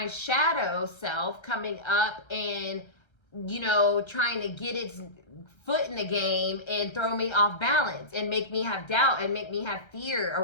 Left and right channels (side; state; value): right; late; 1.3 ms